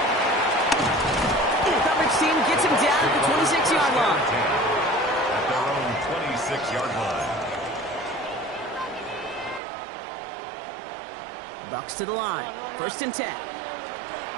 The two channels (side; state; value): left; drops out; at 9.6 s